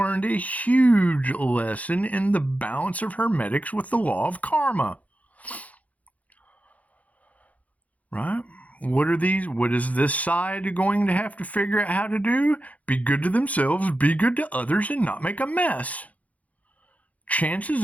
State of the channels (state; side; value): late; right; 0.070 ms